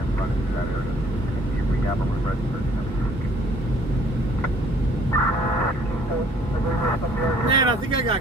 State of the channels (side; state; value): both; normal; correlation 0.59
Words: running through that area, and see if we have a room registered. Man, I think I got